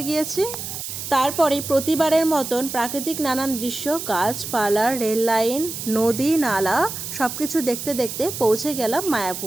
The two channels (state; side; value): noise; right; hiss, 7 dB below the sound